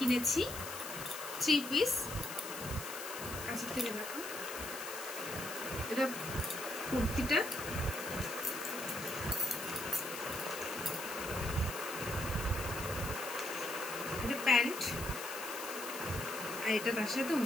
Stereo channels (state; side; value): noise; left; hiss, 9 dB below the sound